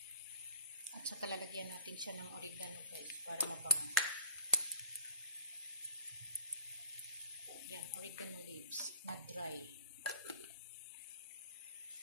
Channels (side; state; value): both; inverted; correlation -0.47